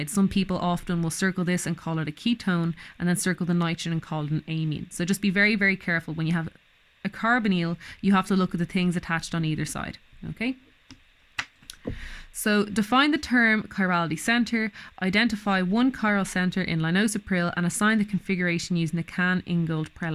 Some people often will circle this and call it a ketone and then circle the nitrogen and call it an amine. So just be very, very careful. When you have a carbonyl, you have to look at the things attached on either side, okay? So define the term chirality center, identify one chiral center in Lisinopril and assign the configuration using the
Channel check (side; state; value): both; identical; correlation 1.00